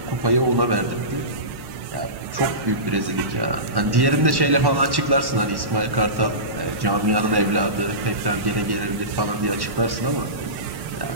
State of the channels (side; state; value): left; late; 1.1 ms